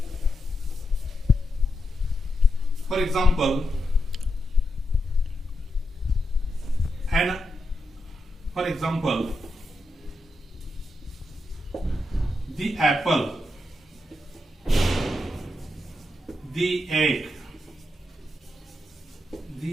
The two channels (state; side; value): normal; both; correlation 0.86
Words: For example, the apple, the egg,